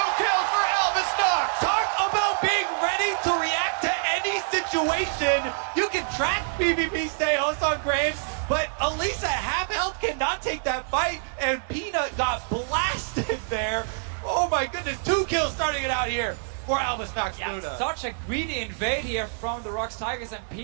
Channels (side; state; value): left; silent; 61 dB below the other